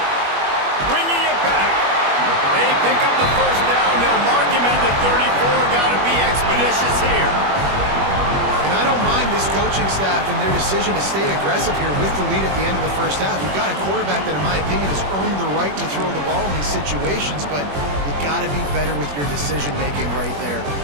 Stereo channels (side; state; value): left; late; 21 ms